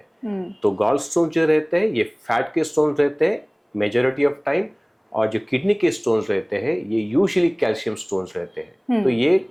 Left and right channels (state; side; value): identical; both; correlation 1.00